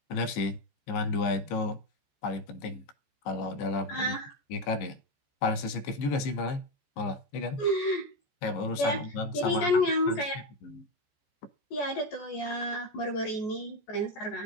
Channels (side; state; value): right; late; 15 ms